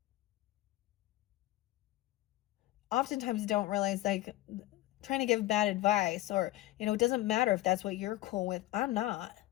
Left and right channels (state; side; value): quieter; right; 17.1 dB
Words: oftentimes don't realize, like, trying to give bad advice, or it doesn't matter if that's what you're cool with. I'm not.